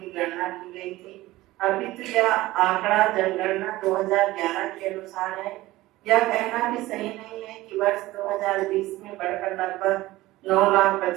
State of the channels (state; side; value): quieter; left; 17.7 dB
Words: गणना की गई थी। अभी तो यह आंकड़ा जनगणना 2011 के अनुसार है। यह कहना भी सही नहीं है कि वर्ष 2020 में बढ़कर लगभग